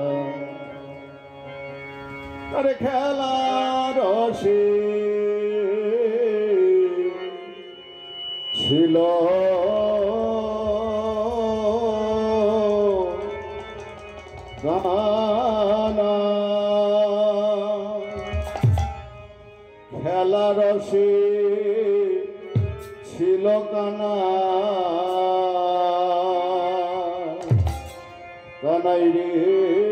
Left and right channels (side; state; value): both; identical; correlation 1.00